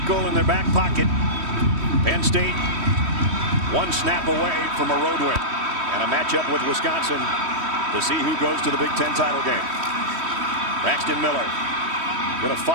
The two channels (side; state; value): left; late; 3.1 ms